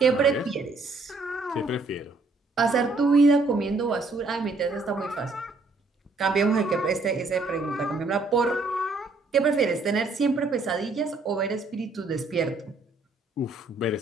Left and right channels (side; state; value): left; quieter; 3.5 dB